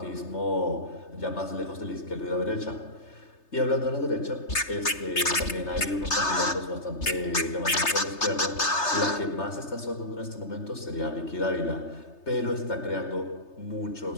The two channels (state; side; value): late; right; 3.3 ms